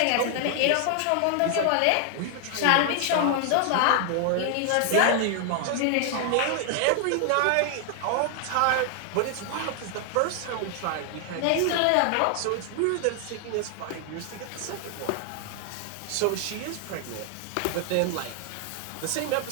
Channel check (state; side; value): different; both; correlation 0.00